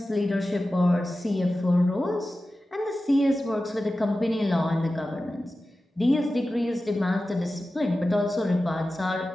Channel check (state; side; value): normal; both; correlation 0.94